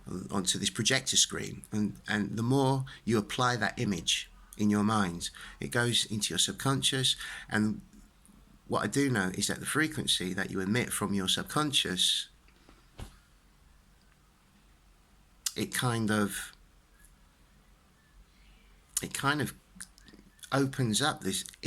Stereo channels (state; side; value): identical; both; correlation 1.00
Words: onto this projector screen, and the more you apply that image in your mind, it goes into your subconscious. And what I do know is that the frequency that you emit from your subconscious it kind of opens up this